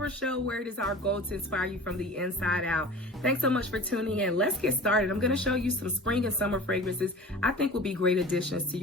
Show, where it is our goal to inspire you from the inside out. Thanks so much for tuning in. Let's get started. I'm going to show you some spring and summer fragrances I think will be great additions to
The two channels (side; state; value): both; normal; correlation 0.38